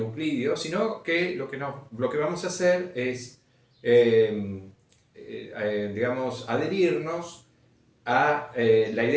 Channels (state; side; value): identical; both; correlation 1.00